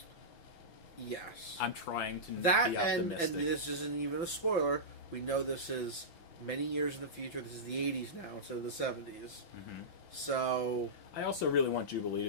Yes. I'm trying to be optimistic. And this isn't even a spoiler. We know this is many years in the future. This is the 80s now instead of the 70s. So... I also really want Jubilee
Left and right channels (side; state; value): right; late; 5.9 ms